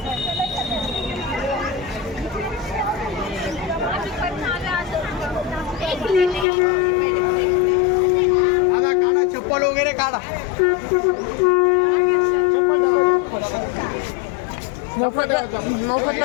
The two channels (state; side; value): drops out; right; at 6.5 s